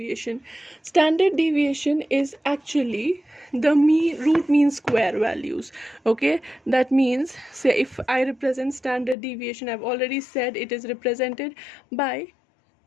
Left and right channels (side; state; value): right; drops out; at 9.2 s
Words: Standard deviation is actually the root mean square values. Okay, that means, say if I represent standard deviation, I've already said it is represented by